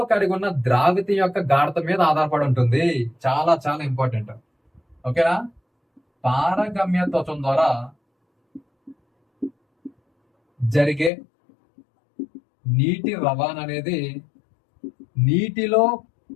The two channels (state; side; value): drops out; right; at 11.1 s